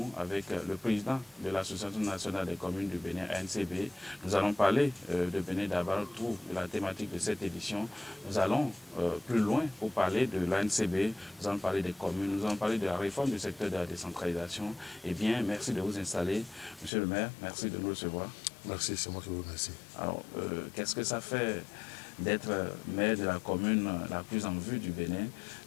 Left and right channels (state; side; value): drops out; right; at 16.9 s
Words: avec le président de l'Association nationale des communes du Bénin, ANCB. Nous allons parler de Bénin Dabaroutou, de la thématique de cette édition. Nous allons plus loin pour parler de l'ANCB, nous allons parler des communes, nous allons parler de la réforme du secteur de la décentralisation. Eh bien, merci de vous installer. Monsieur le maire, merci de nous recevoir. Merci, c'est moi qui vous remercie. Alors, qu'est-ce que ça fait d'être maire de la commune la plus en vue du Bénin,